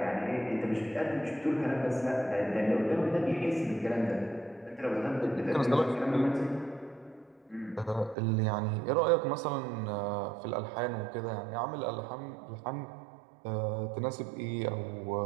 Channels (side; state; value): left; drops out; at 8.2 s